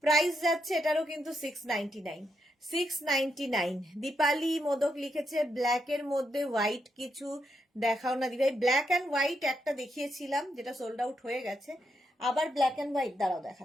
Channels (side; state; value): both; normal; correlation 0.82